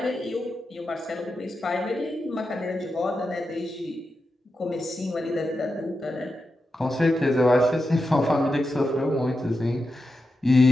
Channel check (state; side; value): normal; both; correlation 0.89